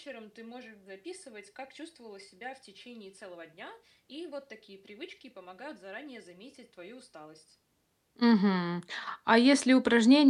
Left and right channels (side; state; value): both; identical; correlation 1.00